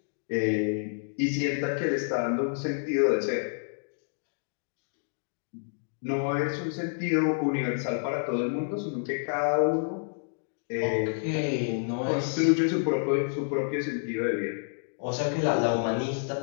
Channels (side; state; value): right; silent; digital silence